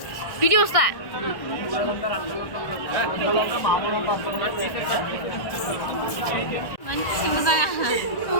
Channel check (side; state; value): right; late; 1.6 ms